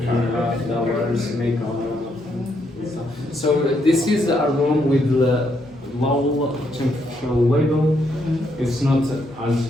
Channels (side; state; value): both; normal; correlation 0.76